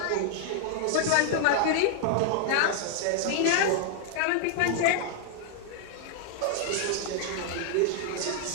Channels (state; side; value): different; both; correlation 0.00